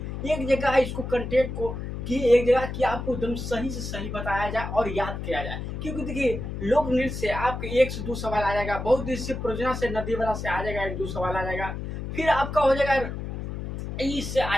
एक जगह इसको कंटेंट को कि एक जगह कि आपको एकदम सही से सही बताया जाए और याद किया जाए। क्योंकि देखिए लोक नृत्य से आपके 1 से 2 सवाल आ जाएगा, बहुउद्देशीय परियोजना से नदी वाला से आ जाएगा 1-2 सवाल आ जाएगा, फिर आपका हो जाएगा इससे आ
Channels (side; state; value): left; noise; hum, 6 dB below the sound